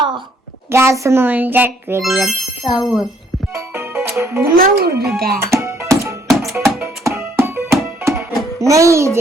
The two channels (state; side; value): normal; both; correlation 0.65